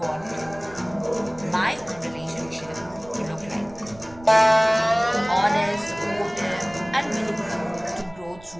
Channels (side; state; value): right; noise; rumble, 21 dB below the sound